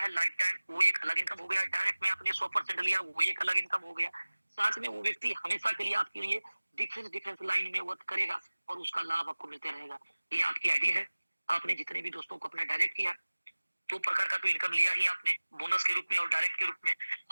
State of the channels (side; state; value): both; inverted; correlation -1.00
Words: लाइफ टाइम, वो एक अलग इनकम हो गया। डायरेक्ट में आपने 100% लिया, वो एक अलग इनकम हो गया। साथ में वो व्यक्ति हमेशा के लिए आपके लिए डिफरेंस लाइन में वर्क करेगा, और उसका लाभ आपको मिलते रहेगा। ये आपकी आईडी है, आपने जितने भी दोस्तों को अपना डायरेक्ट किया, 2 प्रकार का तो इनकम लिया ही आपने, बोनस के रूप में और डायरेक्ट के रूप में।